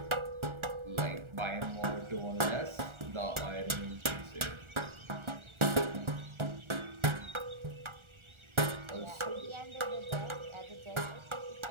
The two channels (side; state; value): left; late; 1.4 ms